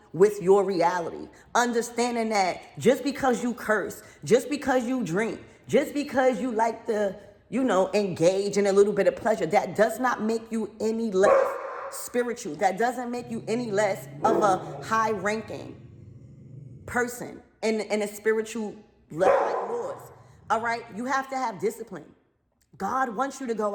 with your reality. Understanding that just because you curse, just because you drink, just because you like to, engage in a little bit of pleasure, that does not make you any less spiritual. That doesn't make you any less of a high ranking person in a spiritual level like yours. All right, you have to have discipline. God wants you to go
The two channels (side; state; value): both; identical; correlation 1.00